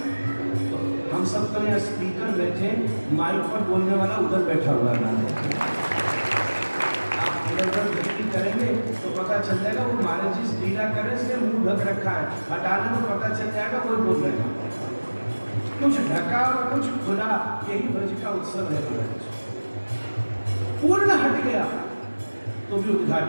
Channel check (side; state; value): both; inverted; correlation -1.00